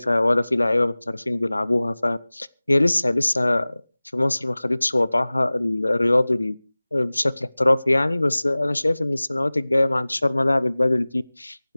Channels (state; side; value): inverted; both; correlation -0.99